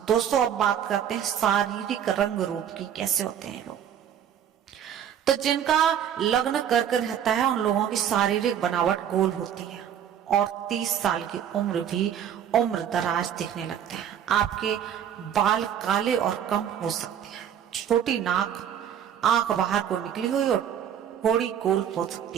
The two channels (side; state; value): left; quieter; 9.3 dB